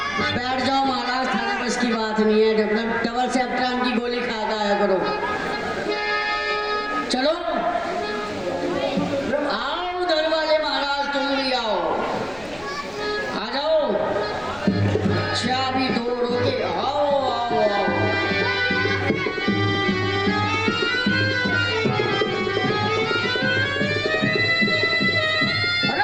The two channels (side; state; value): left; noise; rumble, 22 dB below the sound